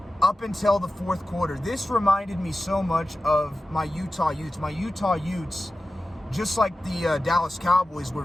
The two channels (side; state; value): both; normal; correlation 0.94